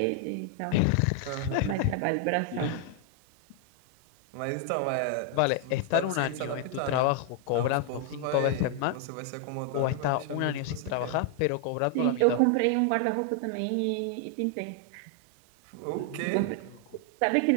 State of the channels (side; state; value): both; different; correlation 0.00